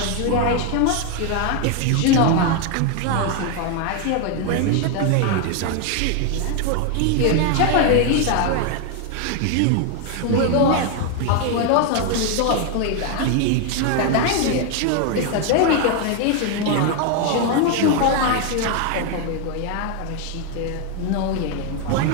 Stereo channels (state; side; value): different; both; correlation 0.01